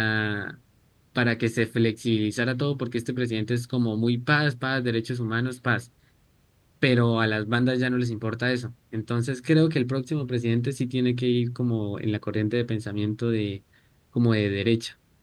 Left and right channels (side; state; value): both; identical; correlation 1.00